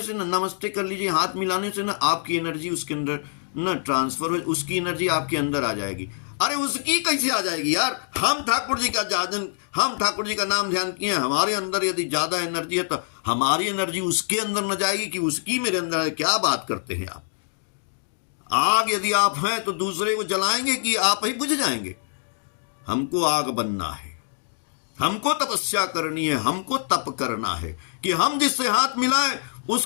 से ना, नमस्ते कर लीजिए, हाथ मिलाने से ना आपकी एनर्जी उसके अंदर ना ट्रांसफर हो, उसकी एनर्जी आपके अंदर आ जाएगी। अरे उसकी कैसे आ जाएगी यार? हम ठाकुर जी का जाजन, हम ठाकुर जी का नाम ध्यान किए, हमारे अंदर यदि ज्यादा एनर्जी है तो हमारी एनर्जी उसके अंदर न जाएगी कि उसकी मेरे अंदर है? क्या बात करते हैं आप? आग यदि आप हैं तो दूसरे को जलाएंगे कि आप ही बुझ जाएंगे? हमको आग बनना है, हमको तपस्या करनी है, हमको तप करना है कि हम जिससे हाथ मिलाएं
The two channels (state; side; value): silent; right; digital silence